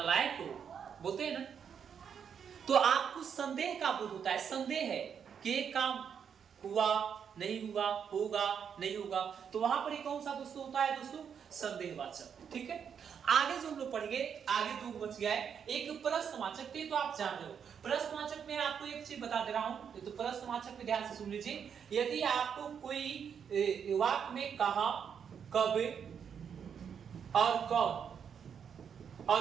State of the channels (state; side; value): quieter; left; 7.5 dB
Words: हो, बोलते हैं ना। तो आपको संदेह का बोध होता है, संदेह है कि काम हुआ नहीं हुआ, होगा नहीं होगा, तो वहां पर कौन सा दोस्तों होता है दोस्तों, संदेहवाचक। ठीक है, आगे जो हम लोग पढ़ेंगे, आगे जो बच गया है एक प्रश्नवाचक, तो आप जान रहे हो। प्रश्नवाचक में आपको एक चीज बता दे रहा हूं, तो प्रश्नवाचक में ध्यान से सुन लीजिए। यदि आपको कोई वाक्य में कहा, कब और कौन